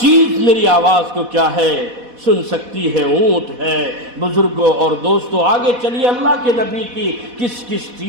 میری آواز کو کیا ہے؟ سن سکتی ہے اونٹ ہے۔ بزرگوں اور دوستوں آگے چلیے، اللہ کے نبی کی کس کس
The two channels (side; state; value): left; late; 4.1 ms